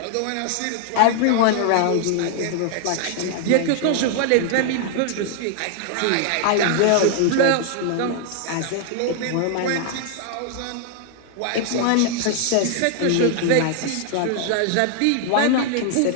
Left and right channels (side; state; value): both; different; correlation 0.00